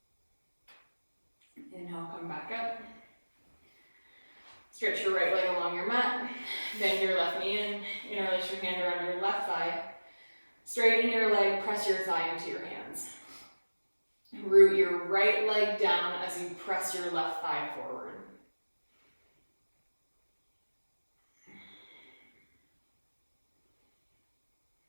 Inhale, come back up. Stretch your right leg along your mat. Bend your left knee in. Interlace your hand around your left thigh. Straighten your leg, press your thigh into your hands. Root your right leg down as you press your left thigh forward.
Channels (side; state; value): both; inverted; correlation -1.00